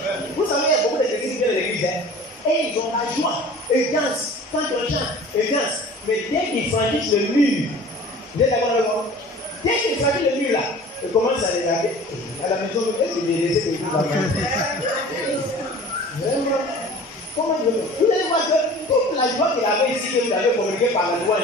Vous savez, il y a beaucoup de chrétiens qui viennent de l'église, hein? Et ils ont la joie. Ils dansent. Quand on chante, ils dansent. Mais dès qu'ils franchissent le mur, vous êtes d'accord avec moi? Dès qu'ils franchissent le mur là, ils commencent à regarder. À la maison, est-ce que j'ai laissé des choses à manger? Vraiment? Comment vous allez voir que toute la joie qu'il avait ici, que vous avez communiqué par la loi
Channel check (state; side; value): normal; both; correlation 0.43